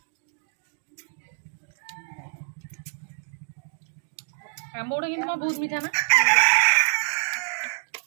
ଆମ୍ବ ଗୁଡା କିନ୍ତୁ ବହୁତ ମିଠା ନା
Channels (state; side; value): silent; left; 56 dB below the other